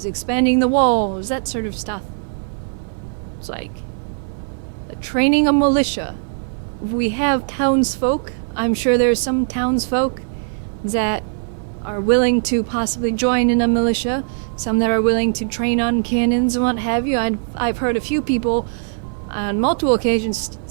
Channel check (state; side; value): silent; left; digital silence